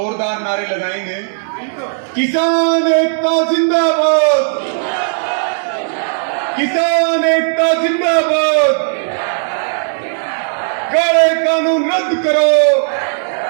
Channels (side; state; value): left; silent; digital silence